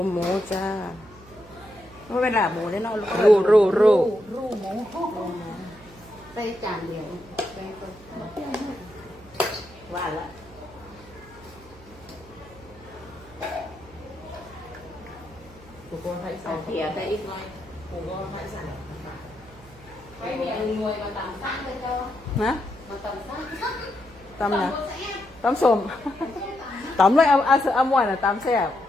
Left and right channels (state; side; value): noise; right; hum, 22 dB below the sound